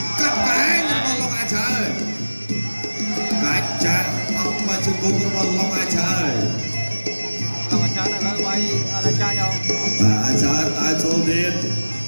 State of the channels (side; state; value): both; inverted; correlation -1.00